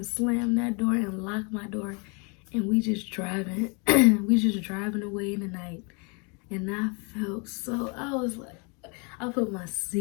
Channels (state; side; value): quieter; right; 33.4 dB